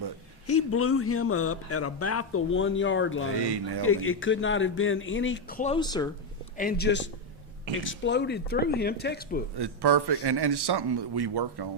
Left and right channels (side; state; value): both; normal; correlation 0.06